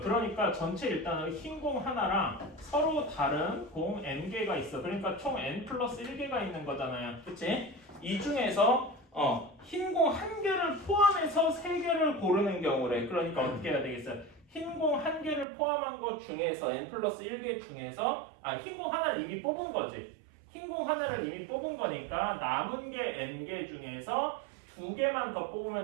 그러니까 전체 일단은 흰공 하나랑 서로 다른 공 n개가 있어. 그러니까 총 n 플러스 1개가 있는 거잖아요. 그치? 이 중에서 흰공 한 개를 포함해서 세 개를 고르는 경우래. 그러니까 어떻게 해야 되겠어요? 흰공 한 개를 포함한 것 중에서 n 플러스 1개 중에서 흰공 하나를 이미 뽑은 거지. 흰공 하나를 이미 뽑은 거니까 남은 게 n개 중에서 두 개만 더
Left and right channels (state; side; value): drops out; left; at 15.5 s